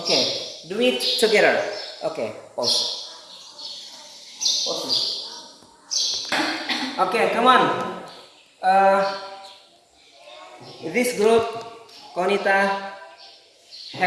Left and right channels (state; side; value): identical; both; correlation 1.00